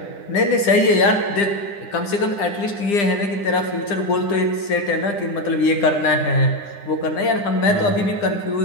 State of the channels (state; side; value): late; right; 10 ms